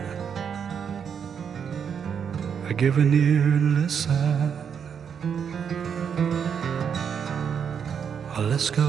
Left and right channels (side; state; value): left; quieter; 7.4 dB